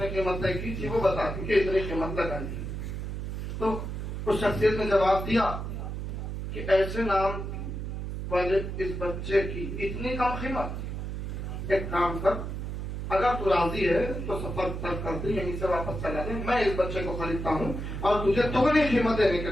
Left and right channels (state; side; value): noise; right; hum, 5 dB below the sound